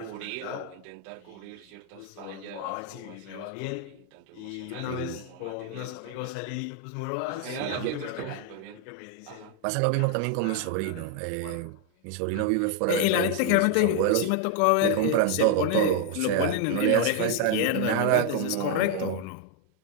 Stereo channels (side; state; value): both; different; correlation 0.00